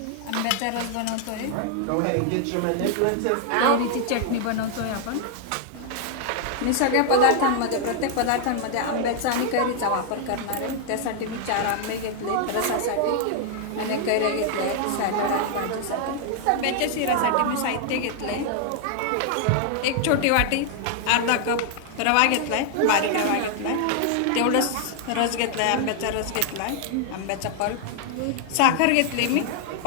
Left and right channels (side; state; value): both; different; correlation 0.00